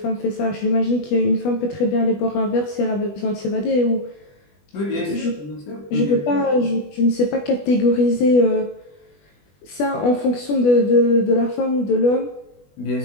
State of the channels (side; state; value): right; late; 20 ms